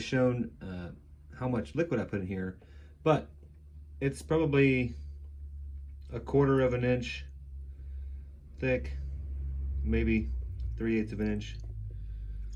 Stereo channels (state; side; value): identical; both; correlation 1.00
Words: how much liquid I put in here, but it's probably 1/4 of an inch thick, maybe 3/8 of an inch.